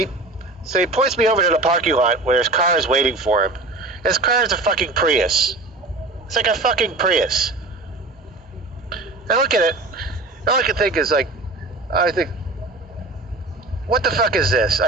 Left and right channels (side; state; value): left; quieter; 3.1 dB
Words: points me over to the parking lot where his car is waiting for him. His car is a fucking Prius. It's like a fucking Prius. I look at it, all I can think is like, what the fuck is this? I